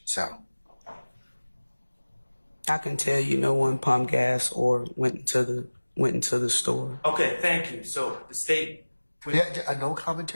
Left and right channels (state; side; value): inverted; both; correlation -1.00